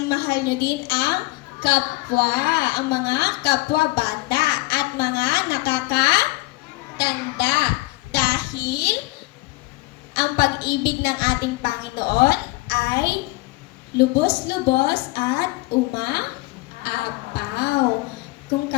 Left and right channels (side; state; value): right; quieter; 21.8 dB